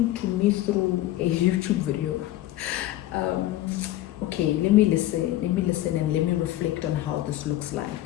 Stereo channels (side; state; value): right; quieter; 14.9 dB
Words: to me through a YouTube video. Okay, let me listen and let me reflect on how this looks